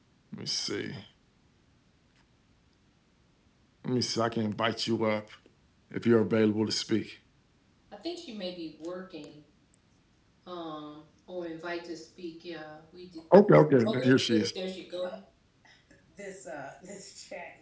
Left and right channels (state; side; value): identical; both; correlation 1.00